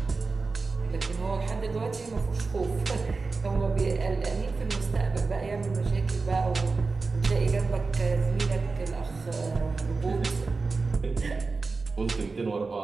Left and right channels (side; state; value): left; quieter; 4.1 dB